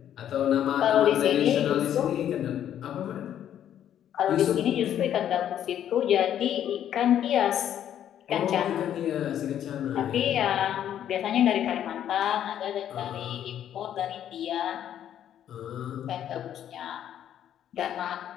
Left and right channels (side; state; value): right; quieter; 10.4 dB